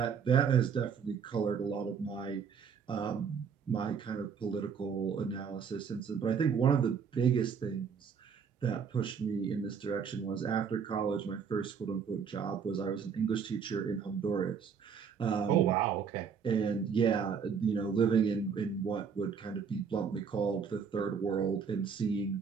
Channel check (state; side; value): quieter; left; 6.5 dB